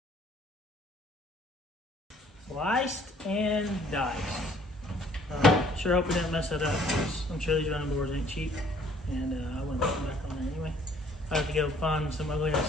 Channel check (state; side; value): normal; both; correlation 0.59